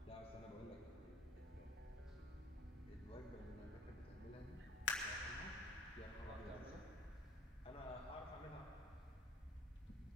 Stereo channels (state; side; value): normal; both; correlation 0.52